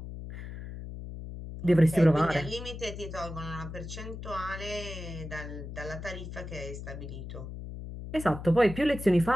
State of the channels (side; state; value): left; noise; hum, 9 dB below the sound